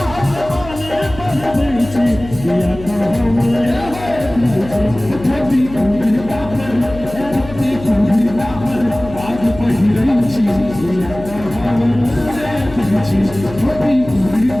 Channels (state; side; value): noise; left; hum, 14 dB below the sound